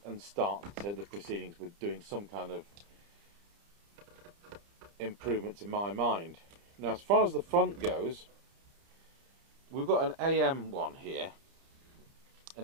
start the proceedings with doing some kind of improvement to my mind. Now as far as the front goes, we've got an AM one here,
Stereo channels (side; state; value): left; late; 30 ms